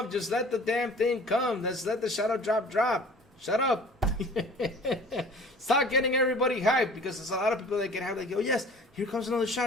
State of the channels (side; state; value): both; normal; correlation 0.46